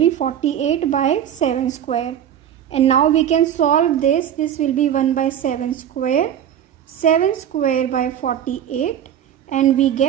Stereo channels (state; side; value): quieter; left; 9.9 dB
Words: 48 by 7 square. And now we can solve this. This will be 1 by 7 square. 7 square by 48. And we